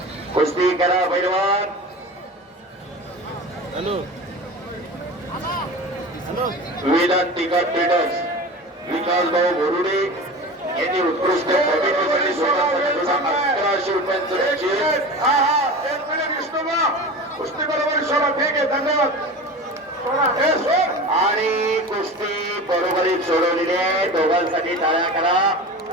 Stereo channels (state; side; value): normal; both; correlation 0.32